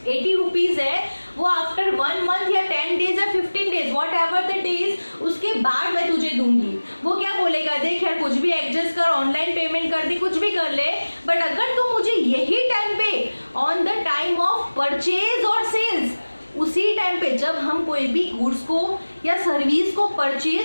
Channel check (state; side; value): inverted; both; correlation -1.00